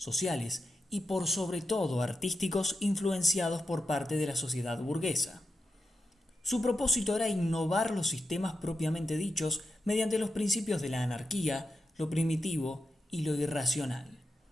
y por sobre todo artísticos influenciados por parte de la sociedad burguesa. Su propósito era innovar los sistemas propiamente dichos mediante los principios de la anarquía, lo primitivo y lo irracional.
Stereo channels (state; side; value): normal; both; correlation 0.89